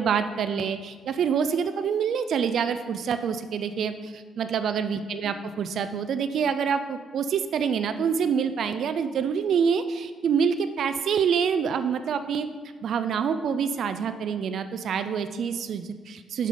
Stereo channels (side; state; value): left; quieter; 6.5 dB